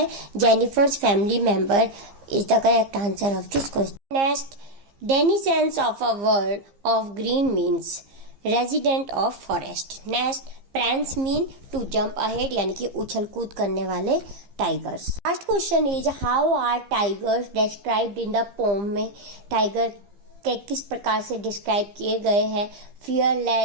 Jennifer's family member is the correct answer of this question. Next, denizens of a world of green means resident of forest. Next, prance mean to jump ahead यानी कि उछल कूद करने वाले tigers. Last question is, how are tigers described in the poem? में tiger के किस प्रकार से डिस्क्राइब किए गए हैं?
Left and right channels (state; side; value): late; left; 15 ms